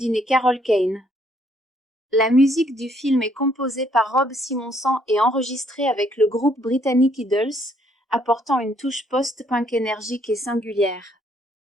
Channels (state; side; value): normal; both; correlation 0.67